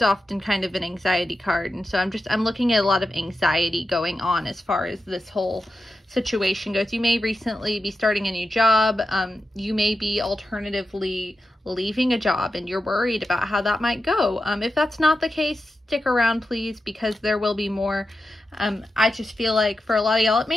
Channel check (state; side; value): normal; both; correlation 0.90